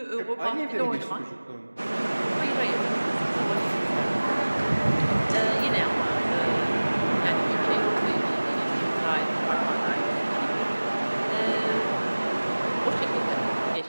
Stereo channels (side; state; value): both; inverted; correlation -1.00